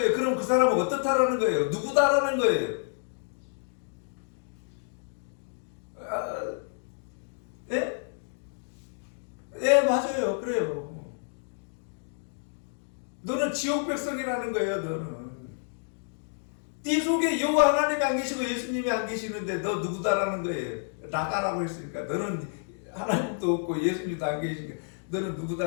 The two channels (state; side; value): silent; right; digital silence